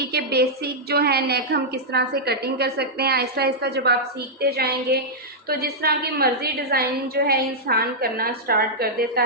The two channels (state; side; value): normal; both; correlation -0.08